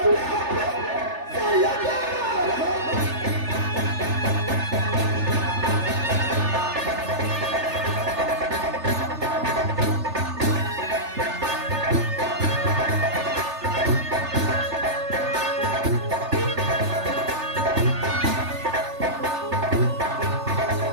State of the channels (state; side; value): late; left; 3.4 ms